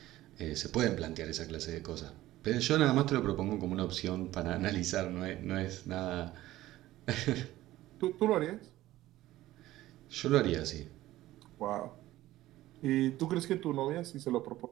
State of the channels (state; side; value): quieter; left; 15.7 dB